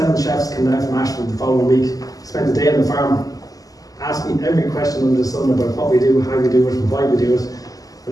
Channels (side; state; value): right; late; 0.17 ms